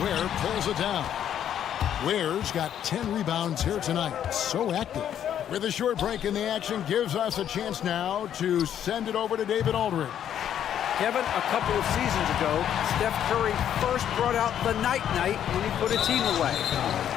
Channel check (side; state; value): right; quieter; 9.9 dB